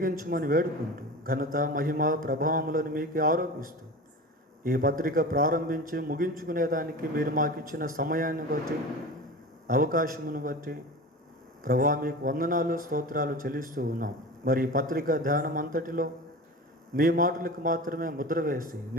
వేడుకుంటూ, ఘనత మహిమ ప్రభావములను మీకు ఆరోపిస్తూ, ఈ పత్రిక ప్రారంభించి ముగించుకునేదానికి మీరు మాకు ఇచ్చిన సమయాన్ని బట్టి, అవకాశమును బట్టి ప్రభా మీకు వందనాలు, స్తోత్రాలు చెల్లిస్తూ ఉన్నాం. మరి ఈ పత్రిక ధ్యానం అంతటిలో మీ మాటలకు మాత్రమే ముద్ర వేసి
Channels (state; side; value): normal; both; correlation 0.32